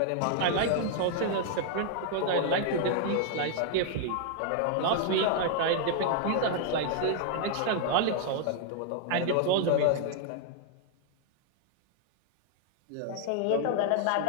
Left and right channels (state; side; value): different; both; correlation 0.00